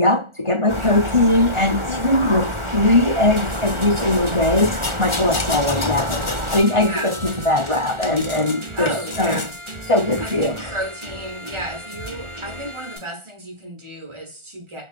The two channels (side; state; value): left; late; 1.4 ms